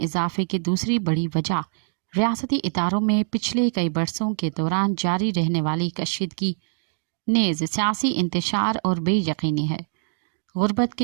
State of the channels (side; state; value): left; silent; digital silence